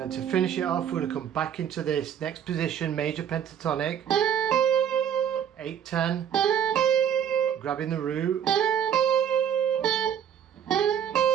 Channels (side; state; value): left; quieter; 9.0 dB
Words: then to finish it off, we're going to come back into this next position, major pentatonic, 8/10, grabbing the root,